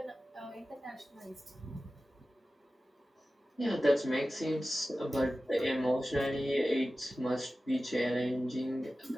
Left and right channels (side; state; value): both; normal; correlation 0.95